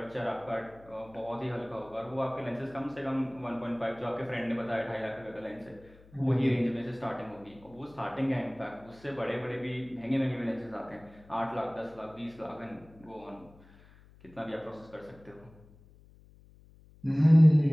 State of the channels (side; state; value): left; noise; hum, 25 dB below the sound